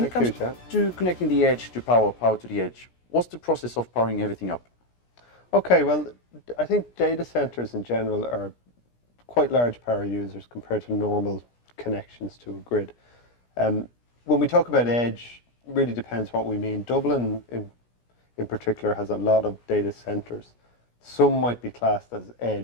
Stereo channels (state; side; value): late; right; 17 ms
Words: it comes to connecting the edge to power to the edge, what's the process of powering everything up? Okay, well, I think data centers in general are quite large power users compared to normal connections to a grid. When we talk about edge, it really depends what we mean. Dublin in particular has a lot of data centers. Some might be classed as